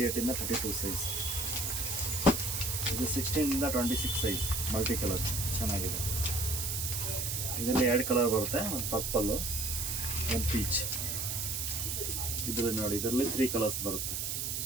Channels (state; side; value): noise; right; hiss, 1 dB below the sound